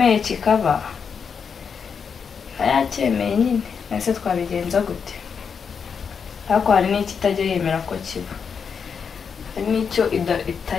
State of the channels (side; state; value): right; quieter; 6.3 dB